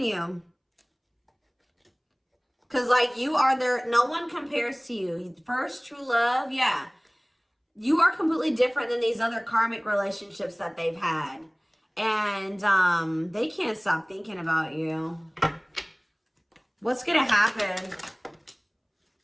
Because, like, you are there. No one compares to you. First true love. Yeah. You are completely different than these other karmic relationships that they've had. And they can't stop thinking about you. What's going to happen?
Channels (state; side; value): identical; both; correlation 1.00